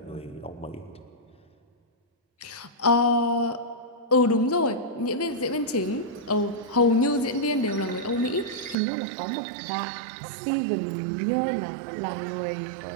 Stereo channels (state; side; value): drops out; left; at 8.8 s